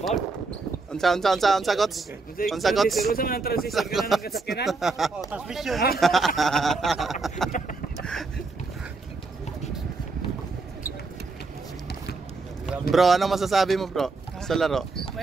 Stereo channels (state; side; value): quieter; left; 3.9 dB